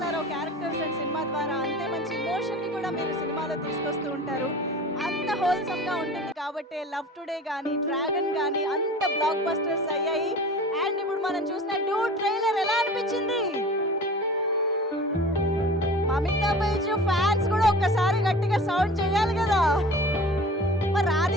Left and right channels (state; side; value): normal; both; correlation 0.40